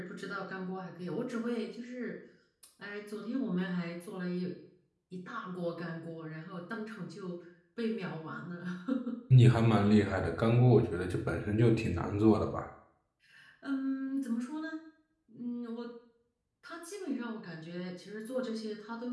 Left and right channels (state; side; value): identical; both; correlation 1.00